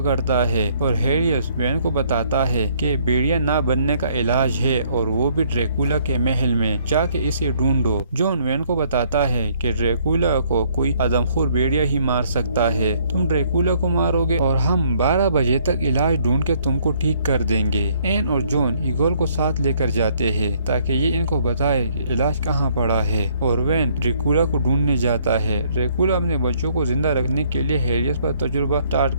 ہے اور ہیریس وین کو بتاتا ہے کہ بھیڑیا نہ بننے کا علاج ہے اور وہ بھی ڈریکولا کے محل میں جا کے اسے ڈھونڈو۔ جون وین کو بتاتا ہے کہ ڈریکولا کو کوئی آدمخور بھیڑیا ہی مار سکتا ہے، تم ڈریکولا کو مارو گے اور ہم 12 بجے تک علاج ڈھونڈ کے تم کو ٹھیک کر دیں گے۔ این اور جون ایگول کو ساتھ لے کر جاتے ہیں تاکہ یہ ان کو بتائے کہ علاج کہاں پڑا ہے اور وین ڈریکولا کو ڈھونڈنے جاتا ہے۔ ڈریکولا اپنے بچوں کو زندہ رکھنے کے لیے ہیریس پر تجربہ سٹارٹ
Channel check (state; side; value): inverted; both; correlation -0.65